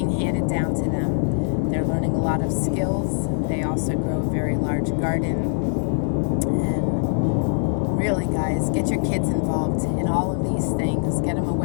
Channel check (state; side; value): silent; right; digital silence